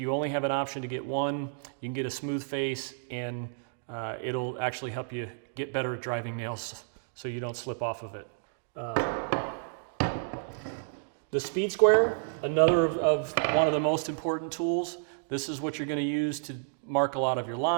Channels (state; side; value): silent; left; digital silence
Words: only have an option to get one, you can get a smooth face, and it'll actually help you get better at driving nails so you don't slip off of it. The speed square, another of one of the most important tools. This is what you're going to use to mark a lot of your